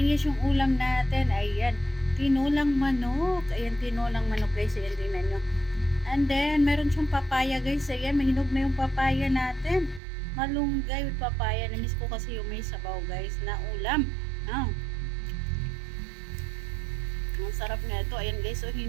yung ulam natin. Ayan, tinulang manok. Ayan, tinulang manok guys. Ayan, tingnan nyo. And then, meron siyang papaya guys. Ayan, mahinog na yung papaya natin. Malunggay with papaya. Namiss ko kasi yung may sabaw guys na ulam. Ang sarap na ito. Ayan guys, so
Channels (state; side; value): drops out; left; at 10.0 s